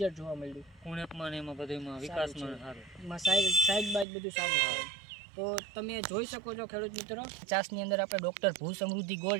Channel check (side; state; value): left; drops out; at 4.0 s